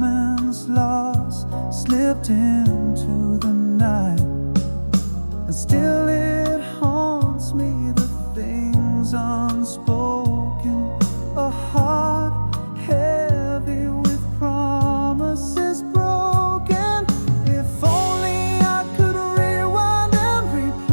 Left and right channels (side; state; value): both; inverted; correlation -1.00